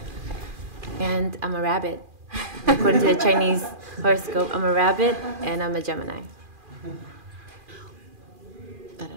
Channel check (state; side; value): late; left; 2.4 ms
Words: And I'm a rabbit. According to the Chinese horoscope, I'm a rabbit and I'm a Gemini. I don't